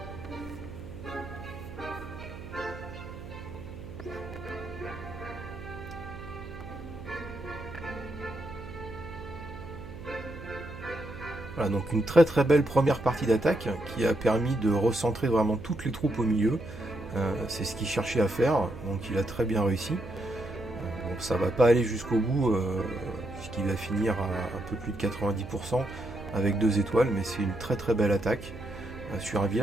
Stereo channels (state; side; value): noise; right; hum, 13 dB below the sound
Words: Voilà, donc une très très belle première partie d'attaque qui a permis de recentrer vraiment toutes les troupes au milieu. C'est ce qu'il cherchait à faire, donc il a très bien réussi. Bon, ça va pas aller jusqu'au bout, puisqu'il va finir à un peu plus de 90% avec 2 étoiles, mais c'est une très très belle attaque sur un